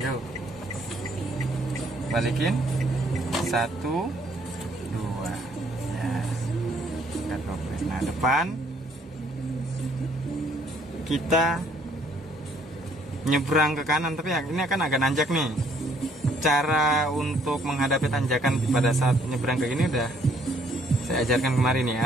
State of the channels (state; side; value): normal; both; correlation 0.64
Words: Balikin. 1, 2. Ya. Angkat kopling. Nah, depan kita nyebrang ke kanan, tapi ini akan agak nanjak nih. Cara untuk menghadapi tanjakan pada saat nyebrang ke gini udah saya ajarkan kemarin